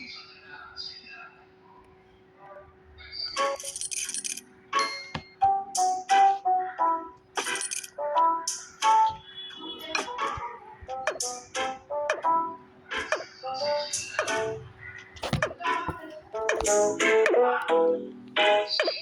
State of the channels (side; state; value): both; identical; correlation 1.00